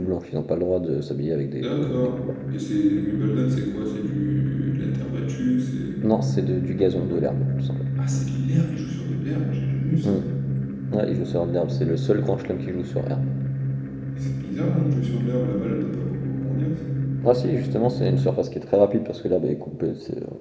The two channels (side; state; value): both; identical; correlation 1.00